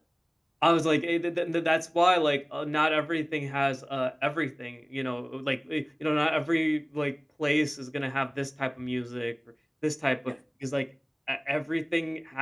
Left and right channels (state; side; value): identical; both; correlation 1.00